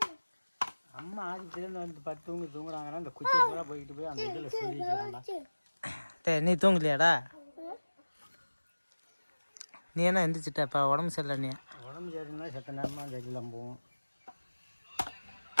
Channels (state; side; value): inverted; both; correlation -1.00